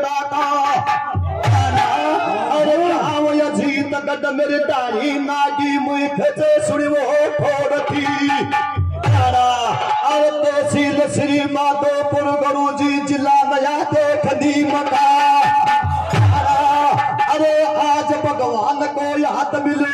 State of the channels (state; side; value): identical; both; correlation 1.00